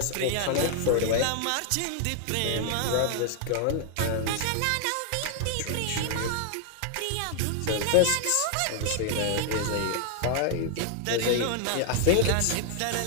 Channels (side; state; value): both; different; correlation 0.00